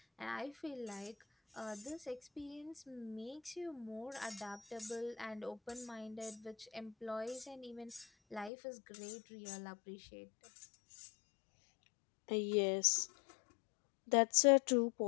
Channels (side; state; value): right; drops out; at 8.5 s